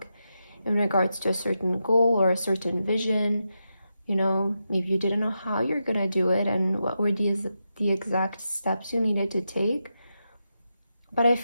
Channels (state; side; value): inverted; both; correlation -0.87